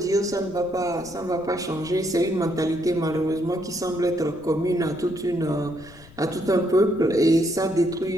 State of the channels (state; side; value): noise; left; rumble, 22 dB below the sound